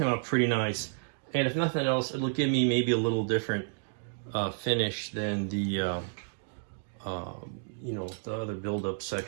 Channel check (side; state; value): left; silent; digital silence